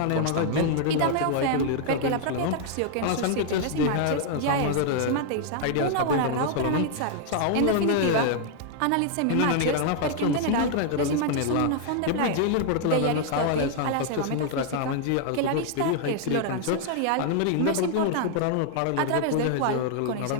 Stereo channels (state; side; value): different; both; correlation 0.00